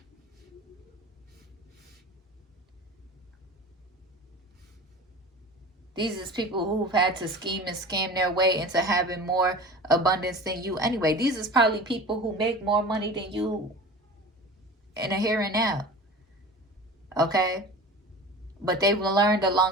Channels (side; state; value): both; normal; correlation 0.36